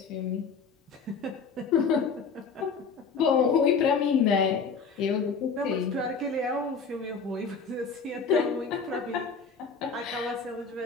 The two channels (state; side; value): quieter; right; 5.3 dB